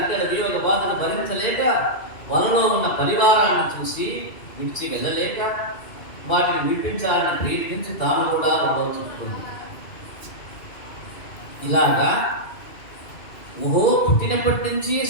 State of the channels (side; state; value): right; late; 2.5 ms